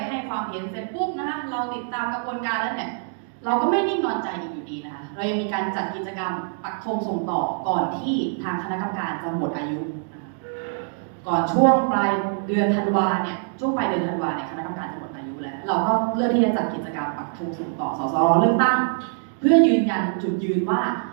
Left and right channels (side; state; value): left; silent; digital silence